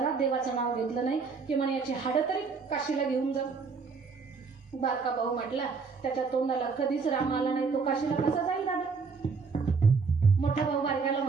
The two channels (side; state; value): left; quieter; 4.9 dB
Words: देवाचं नाव घेतलं नाही की म्हणे याची हाडं तरी काशीला घेऊन जा. बारका भाऊ म्हटला त्याच्या तोंडाला कधीच राम आला नाही, तो काशीला कसा जाईल दादा. मोठा भाऊ बारक्याला